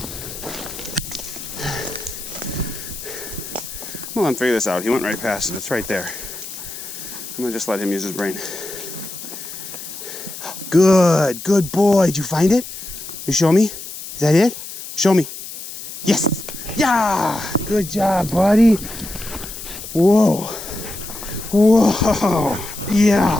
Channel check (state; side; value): noise; left; hiss, 11 dB below the sound